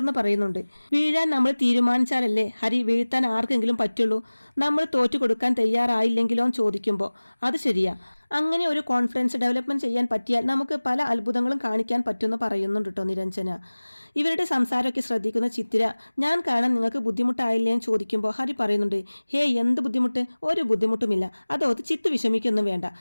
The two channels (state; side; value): inverted; both; correlation -1.00